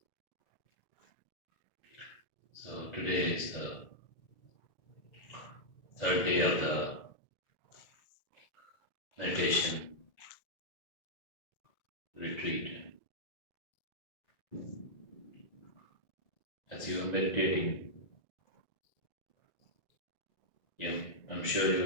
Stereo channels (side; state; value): right; late; 1.9 ms